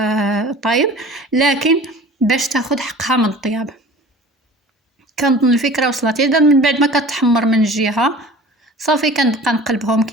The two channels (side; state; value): both; normal; correlation 0.42